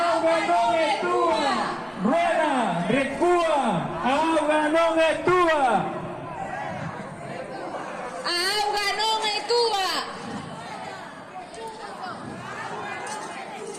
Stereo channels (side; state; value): both; identical; correlation 1.00